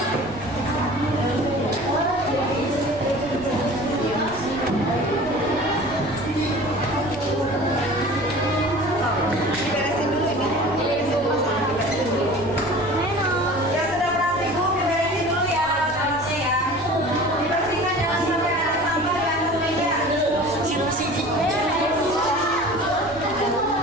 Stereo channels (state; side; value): noise; right; rumble, 18 dB below the sound